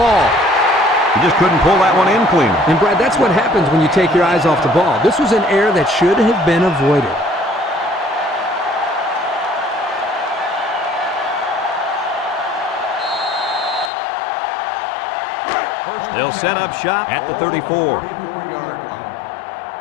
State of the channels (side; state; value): right; drops out; at 13.9 s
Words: He just couldn't pull that one in clean. And, Brad, that's what happens when you take your eyes off the ball. This was an error that should have been avoided. They'll set up shop at the 34.